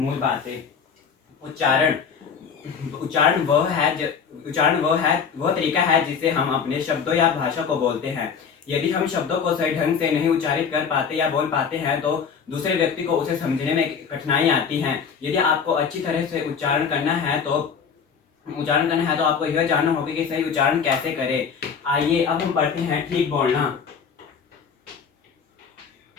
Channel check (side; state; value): right; quieter; 6.5 dB